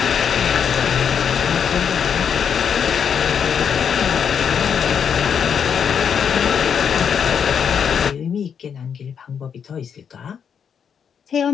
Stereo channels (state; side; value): quieter; right; 7.4 dB